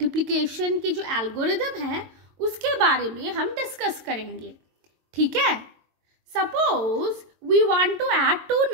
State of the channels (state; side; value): late; left; 22 ms